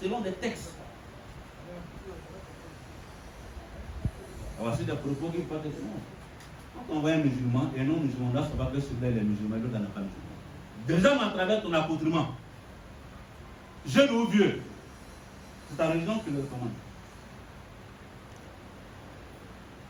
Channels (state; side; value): identical; both; correlation 1.00